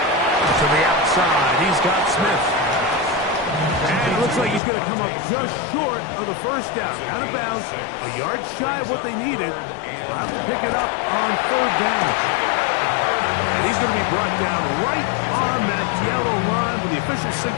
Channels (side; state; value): right; drops out; at 4.6 s